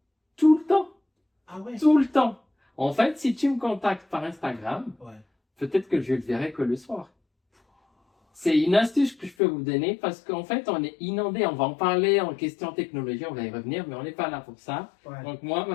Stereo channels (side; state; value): right; drops out; at 9.3 s